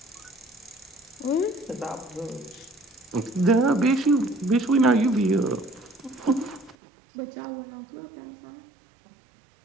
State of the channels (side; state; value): left; drops out; at 6.8 s